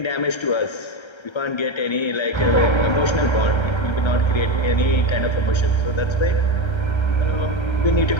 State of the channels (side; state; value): right; late; 1.3 ms